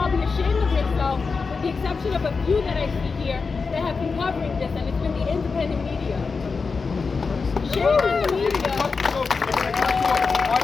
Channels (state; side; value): quieter; right; 4.7 dB